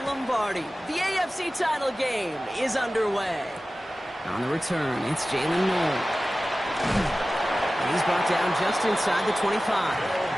The AFC title game is underway. On the return, it's Jalen Noel. And he's brought down just inside the 25.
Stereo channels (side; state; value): both; normal; correlation 0.96